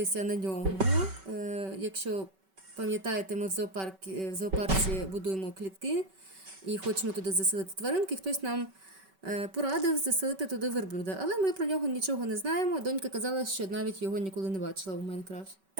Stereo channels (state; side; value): late; left; 5.2 ms